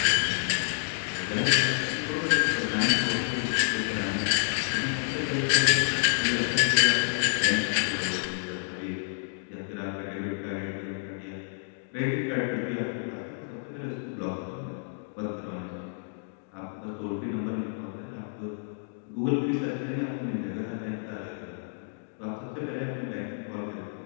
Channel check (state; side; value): silent; right; digital silence